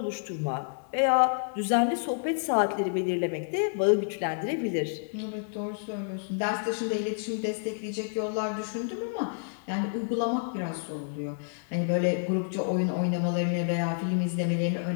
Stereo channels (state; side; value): silent; right; digital silence